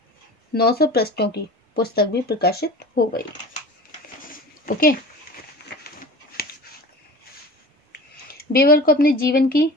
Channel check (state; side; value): normal; both; correlation 0.37